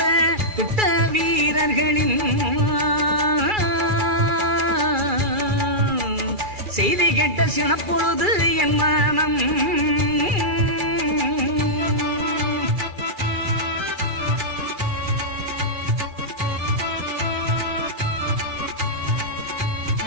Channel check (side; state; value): left; late; 2.4 ms